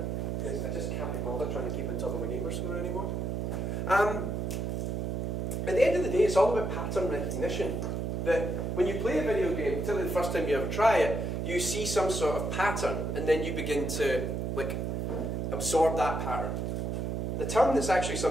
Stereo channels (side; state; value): right; noise; hum, 1 dB below the sound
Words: Because I just can't be bothered trying to keep on top of my gamer score anymore. At the end of the day, it's all about pattern recognition. That when you play a video game, particularly the first time you ever try it, you see some sort of pattern, and then you begin to like absorb that pattern. The term that's actually